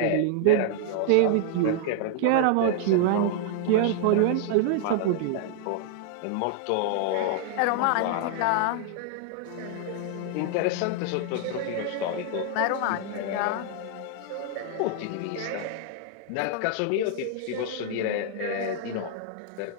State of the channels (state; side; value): different; both; correlation 0.00